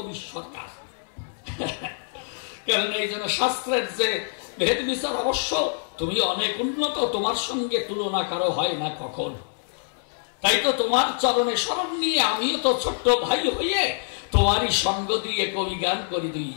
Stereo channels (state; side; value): silent; right; 61 dB below the other